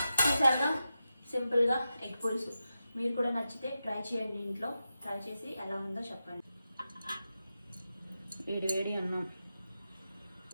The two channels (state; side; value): inverted; both; correlation -0.90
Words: చూసారుగా సింపుల్గా ఎగ్ పులుసు. మీరు కూడా నచ్చితే ట్రై చేయండి ఇంట్లో. ట్రై చేసి ఎలా ఉందో చెప్పండి. వేడి వేడి అన్నం